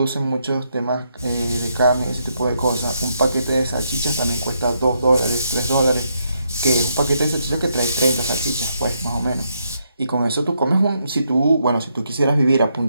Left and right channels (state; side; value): inverted; both; correlation -0.78